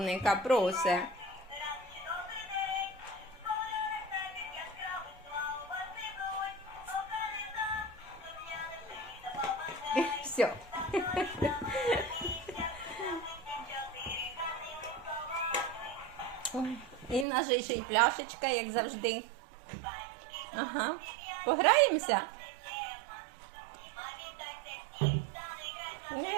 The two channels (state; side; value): drops out; left; at 17.2 s